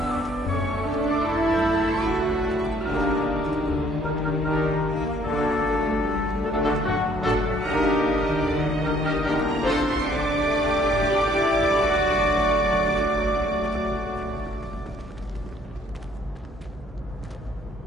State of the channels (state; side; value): normal; both; correlation 0.64